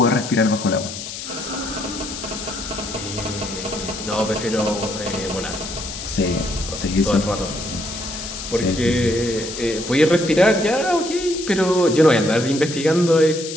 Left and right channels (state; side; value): noise; left; hiss, 9 dB below the sound